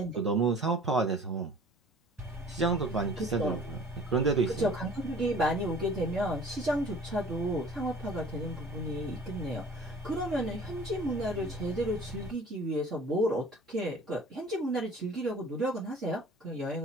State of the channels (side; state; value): both; normal; correlation 0.48